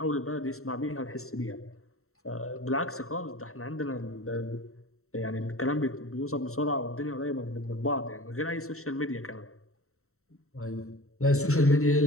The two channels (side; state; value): right; late; 0.63 ms